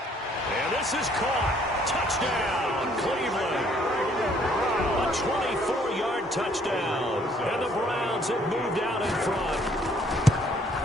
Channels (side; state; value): both; normal; correlation 0.63